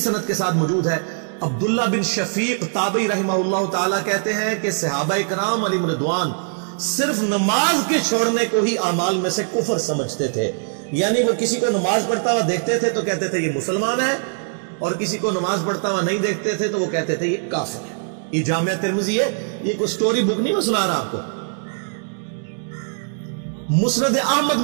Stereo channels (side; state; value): left; silent; digital silence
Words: کے ساتھ موجود ہے، عبداللہ بن شفیق تابعی رحمہ اللہ تعالیٰ کہتے ہیں کہ صحابہ کرام علیہم رضوان صرف نماز کے چھوڑنے کو ہی اعمال میں سے کفر سمجھتے تھے، یعنی وہ کسی کو نماز پڑھتا ہوا دیکھتے تھے تو کہتے تھے یہ مسلمان ہے، اور کسی کو نماز پڑھتا ہوا نہیں دیکھتے تھے تو وہ کہتے تھے یہ کافر ہے۔ یہ جامعہ ترمذی ہے، یہ کوئی سٹوری بک نہیں میں سنا رہا آپ کو۔ مسند احمد